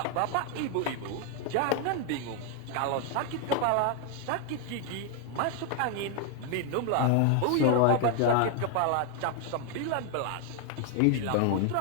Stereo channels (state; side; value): different; both; correlation 0.01